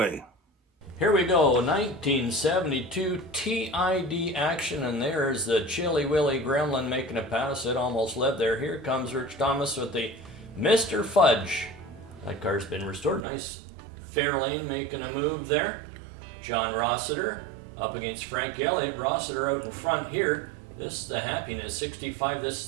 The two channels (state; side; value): drops out; left; at 13.2 s